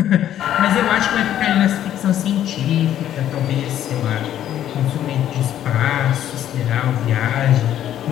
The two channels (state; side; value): quieter; right; 11.3 dB